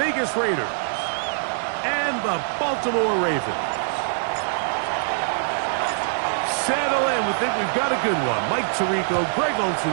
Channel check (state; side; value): silent; left; digital silence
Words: Raiders and the Baltimore Ravens. Settle in, we think we've got a good one. Mike Tirico, Greg